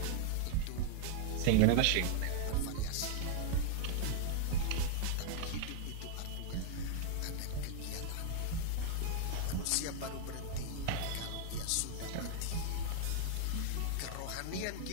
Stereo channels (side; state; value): both; different; correlation 0.00